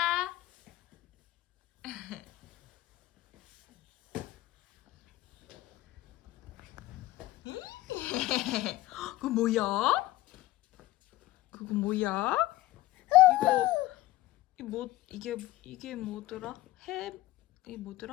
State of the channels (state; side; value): quieter; right; 16.9 dB